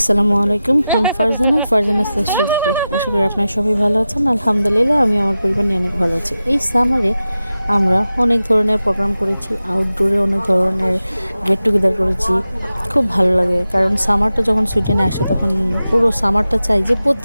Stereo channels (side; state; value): both; inverted; correlation -0.93